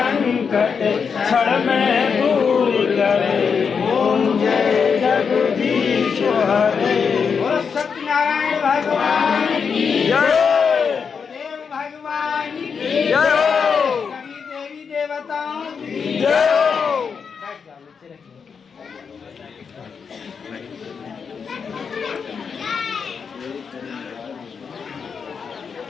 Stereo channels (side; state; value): right; quieter; 6.1 dB